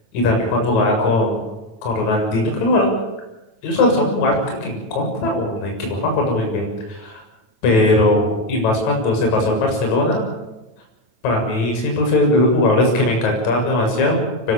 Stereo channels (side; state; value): right; late; 9.1 ms